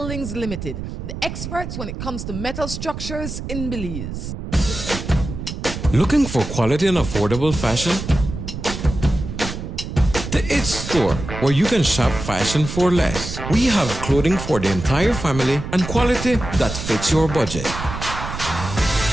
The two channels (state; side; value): noise; right; rumble, 7 dB below the sound